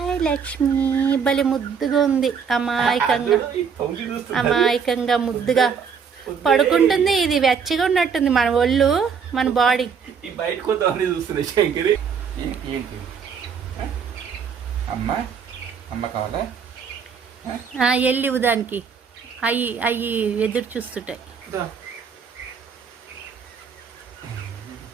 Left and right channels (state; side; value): quieter; left; 6.5 dB